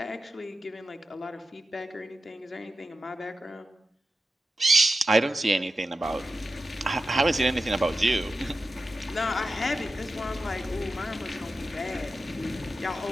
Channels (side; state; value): both; normal; correlation 0.90